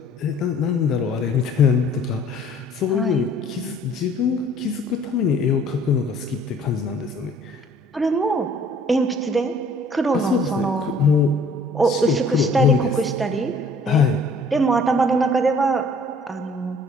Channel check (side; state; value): both; normal; correlation 0.55